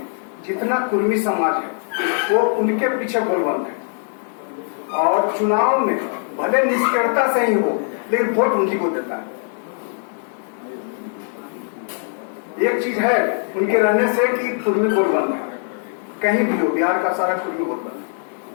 जितना कुर्मी समाज है वो उनके पीछे बलवंत है, और चुनाव में भले निष्क्रियता से ही हो लेकिन वोट उन्हीं को देता है। एक चीज है उनके रहने से कि कुर्मी बलवंत है, कहीं भी हो बिहार का सारा कुर्मी बलवंत है,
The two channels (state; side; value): silent; right; 55 dB below the other